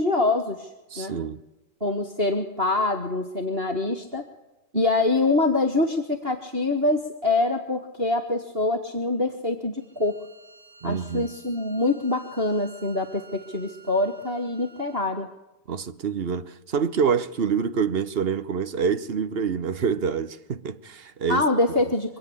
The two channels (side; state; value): left; late; 2.8 ms